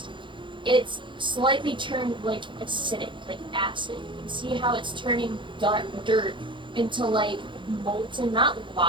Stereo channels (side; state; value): left; late; 0.23 ms